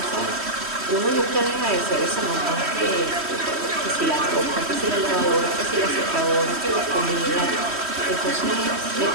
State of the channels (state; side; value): late; left; 3.1 ms